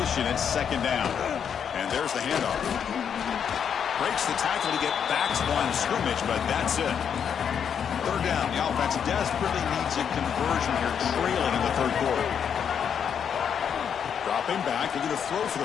it's 2nd down. And there's the handoff. Breaks the tackle to get back to line of scrimmage, but that's it. 3rd down. The offense desperately needs a conversion here, trailing in the 3rd quarter. Dropping back, looking to throw for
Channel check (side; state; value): right; quieter; 7.8 dB